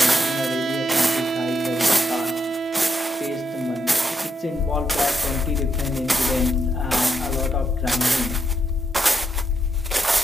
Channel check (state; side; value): normal; both; correlation 0.80